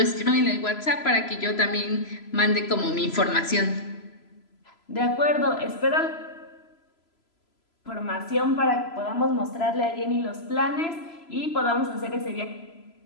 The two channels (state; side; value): late; right; 3.0 ms